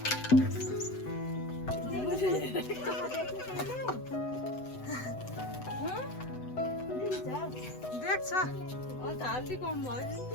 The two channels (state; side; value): late; right; 7.9 ms